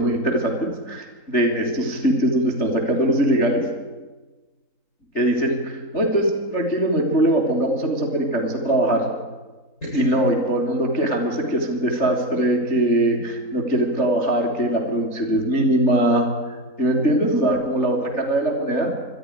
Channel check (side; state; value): right; late; 3.9 ms